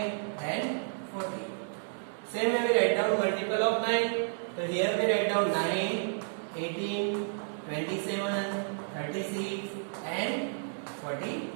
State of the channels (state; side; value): silent; left; digital silence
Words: then 40. Same way we write down multiple of 9. So here we write down 9, 18, 27, 36 and